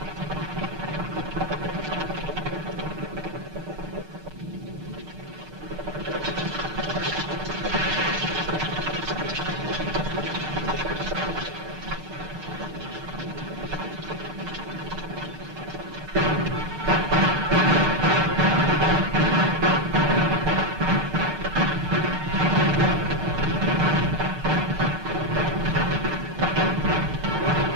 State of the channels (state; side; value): late; left; 6.6 ms